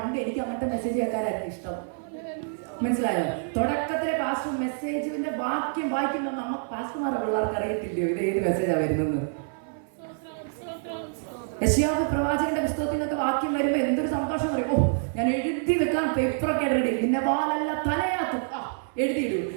എനിക്ക് അങ്ങനത്തെ മെസ്സേജ് കേൾക്കാനായിരുന്നു ഇഷ്ടം. മനസ്സിലായോ? തുടക്കത്തിലെ പാസ്റ്റർ മെസ്സേജിന്റെ വാക്യം വായിക്കുമ്പോൾ നമുക്ക് പാസ്റ്റർമാരുടെ പിള്ളേർക്ക് അറിയത്തില്ലയോ ഇത് ഏത് മെസ്സേജാണ് വരുന്നത്. യെശയ്യാവ് പ്രവാചകന്റെ പുസ്തകത്തിൽ നിന്നൊക്കെ വാക്യം വരുമ്പോൾ എന്തൊരു സന്തോഷം പറയും. ഓ, ഞാൻ എഴുതി വെക്കാൻ പേപ്പറൊക്കെ റെഡി, നിന്നെ വാലല്ല തലയാക്കും, എഴുതിയിടൂ.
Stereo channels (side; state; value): left; silent; 60 dB below the other